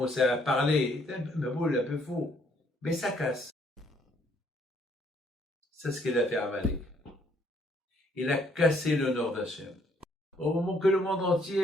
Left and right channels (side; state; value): both; normal; correlation 0.67